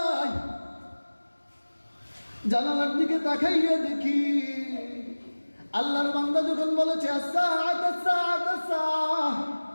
জানালার দিকে তাকাইয়া দেখি আল্লাহর বান্দা যখন বলেছে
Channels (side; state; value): both; inverted; correlation -1.00